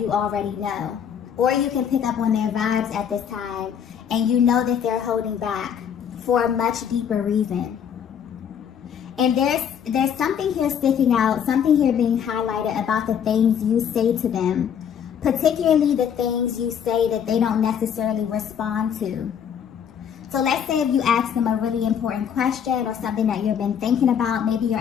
already know. Or you can pick up on their vibes at this time, and you know that they're holding back for a much deeper reason. And there's something here sticking out, something here being highlighted about the things you say to them, particularly the things you say that they don't necessarily respond to. So let's say if you ask them a really important question or something that you've been thinking about, maybe you're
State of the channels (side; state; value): right; quieter; 8.3 dB